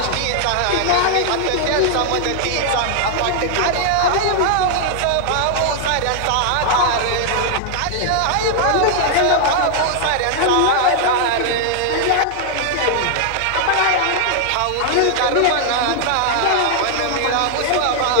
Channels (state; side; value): different; both; correlation 0.00